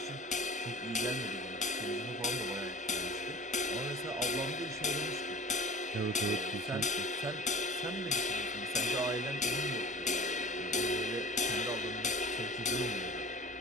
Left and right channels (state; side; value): normal; both; correlation 0.41